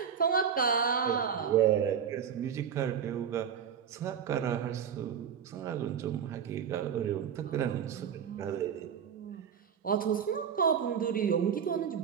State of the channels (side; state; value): left; quieter; 7.8 dB